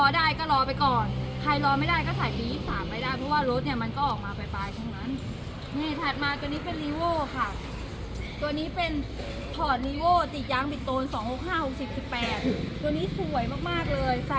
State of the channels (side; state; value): both; identical; correlation 1.00